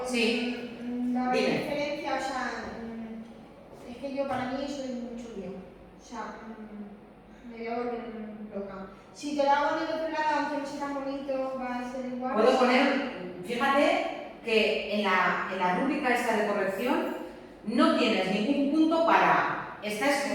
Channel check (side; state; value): both; identical; correlation 1.00